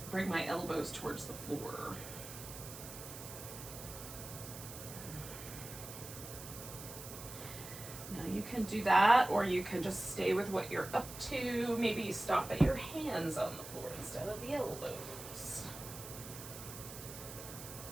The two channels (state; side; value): noise; right; hiss, 12 dB below the sound